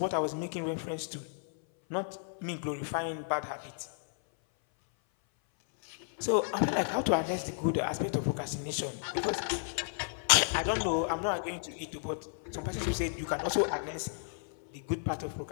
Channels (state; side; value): silent; right; 56 dB below the other